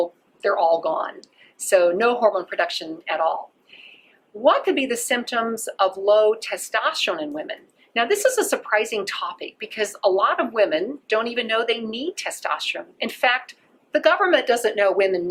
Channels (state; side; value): identical; both; correlation 1.00